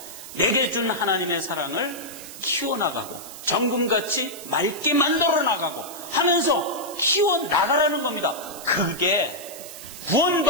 내게 준 하나님의 사랑을 키워나가고 정금같이 맑게 만들어 나가고 하면서 키워나가라는 겁니다. 그게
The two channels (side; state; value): right; noise; hiss, 13 dB below the sound